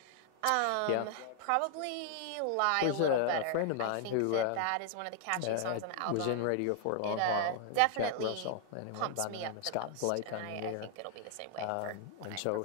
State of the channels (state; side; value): different; both; correlation 0.00